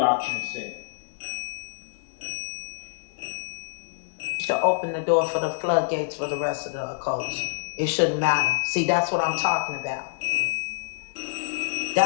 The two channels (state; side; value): silent; right; digital silence